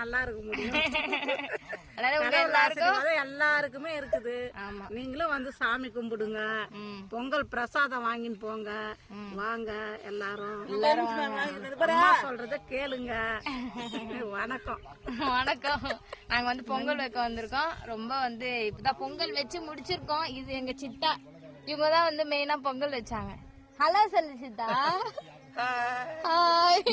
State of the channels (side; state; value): both; identical; correlation 1.00